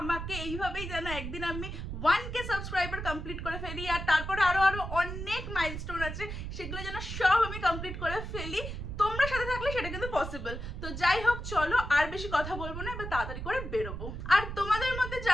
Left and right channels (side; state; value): right; noise; rumble, 6 dB below the sound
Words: আমাকে এইভাবেই, যেন একদিন আমি 1K সাবস্ক্রাইবার কমপ্লিট করে ফেলি। আর তারপরে আরো অনেক মাইলস্টোন আছে, সেগুলো যেন সব আমি কমপ্লিট করে ফেলি। তোমরা সাথে থাকলে সেটা কিন্তু পসিবল। তো যাই হোক, চলো আর বেশি কথা বলবো না, এবার তাড়াতাড়ি করে বেরোবো। আর তোমাদের মধ্যে